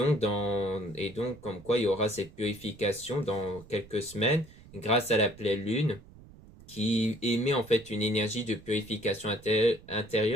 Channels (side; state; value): right; noise; rumble, 21 dB below the sound